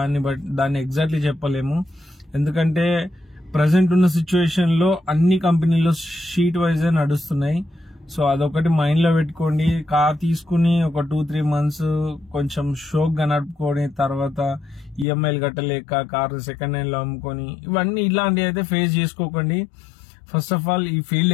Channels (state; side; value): drops out; right; at 15.1 s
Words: దాన్ని ఎగ్జాక్ట్లీ చెప్పలేము. ఎందుకంటే ప్రజెంట్ ఉన్న సిచ్యువేషన్ లో అన్ని కంపెనీలో షీట్ వైజ్ నడుస్తున్నాయి. సో అదొకటి మైండ్ లో పెట్టుకోండి. కార్ తీసుకుని ఒక 2-3 మంత్స్ కొంచెం షోక్ గా నడుపుకొని తర్వాత ఈఎంఐలు కట్టలేక కార్ సెకండ్ హ్యాండ్ లో అమ్ముకొని, ఇవన్నీ ఇలాంటివి అయితే ఫేస్ చేసుకోకండి. ఫస్ట్ ఆఫ్ ఆల్ ఈ ఫీల్డ్